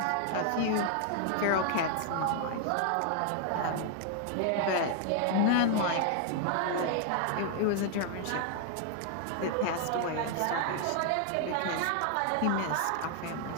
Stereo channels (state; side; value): different; both; correlation 0.00